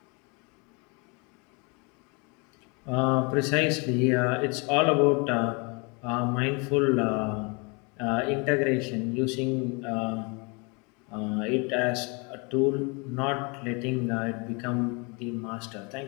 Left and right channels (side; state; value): right; quieter; 31.0 dB